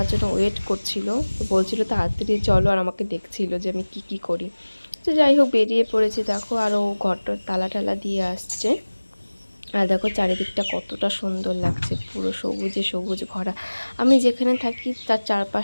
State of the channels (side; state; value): both; inverted; correlation -1.00